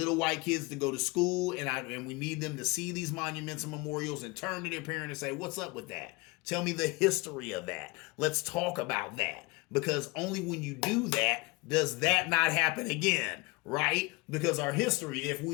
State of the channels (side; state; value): right; quieter; 25.4 dB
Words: white kids to go to school and we need them to see these monuments and memorials and turn to their parent and say, what's up with that? Tell me the history of that. Let's talk about that. Because only when you do that, does that not happen again, right? Because our history, if